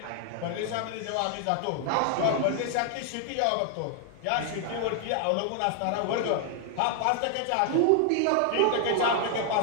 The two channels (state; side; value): different; both; correlation 0.00